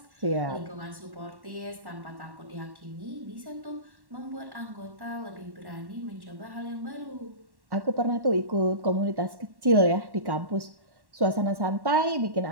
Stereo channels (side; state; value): left; late; 1.1 ms